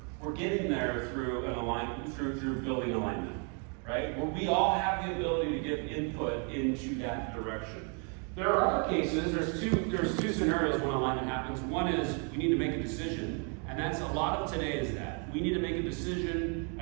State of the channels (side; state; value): left; quieter; 38.8 dB